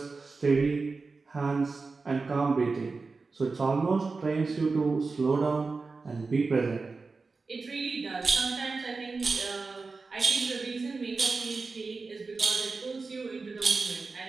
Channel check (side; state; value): left; quieter; 4.1 dB